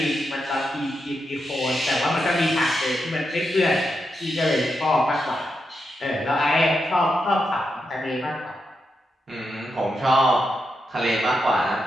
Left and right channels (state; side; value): normal; both; correlation 0.85